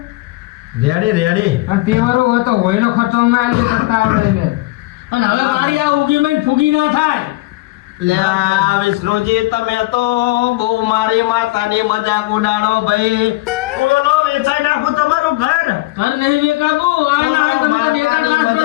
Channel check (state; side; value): quieter; right; 20.1 dB